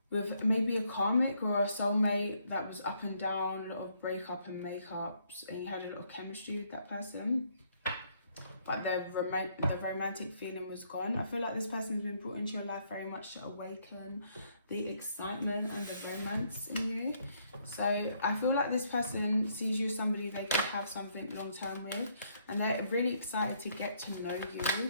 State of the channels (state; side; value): inverted; both; correlation -0.70